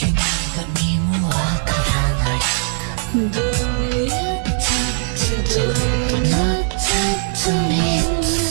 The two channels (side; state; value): left; silent; digital silence